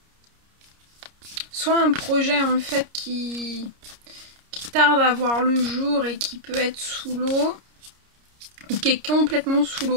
soit un projet en fait qui tarde à voir le jour et qui peut être sous l'eau, ou qui est complètement sous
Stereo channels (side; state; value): left; late; 30 ms